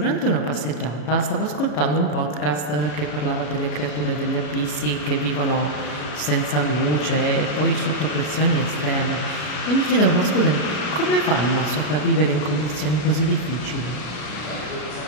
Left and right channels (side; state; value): right; late; 33 ms